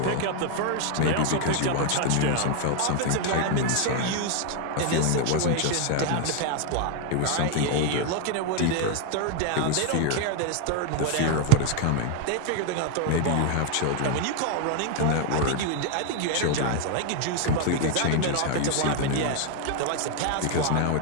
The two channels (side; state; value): both; different; correlation 0.01